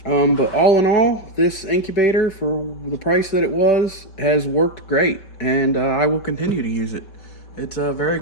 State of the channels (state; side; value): late; right; 5.2 ms